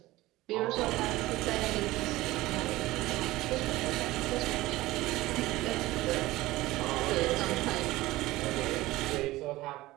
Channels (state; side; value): quieter; left; 18.2 dB